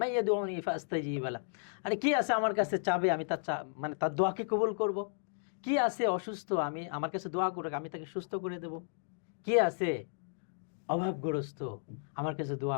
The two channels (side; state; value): right; silent; digital silence